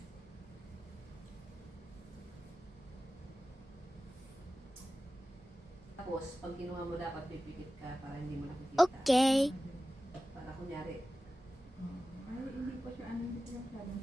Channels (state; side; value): normal; both; correlation 0.95